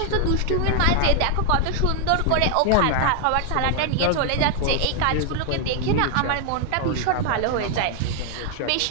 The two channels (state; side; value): different; both; correlation 0.00